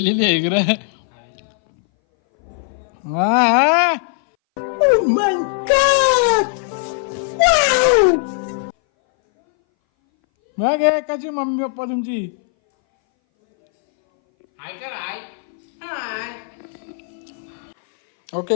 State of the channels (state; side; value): silent; right; 61 dB below the other